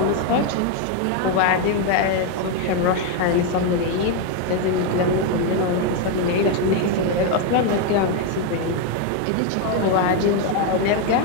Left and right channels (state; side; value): different; both; correlation 0.01